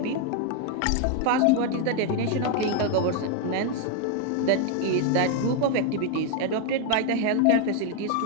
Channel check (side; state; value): both; different; correlation 0.01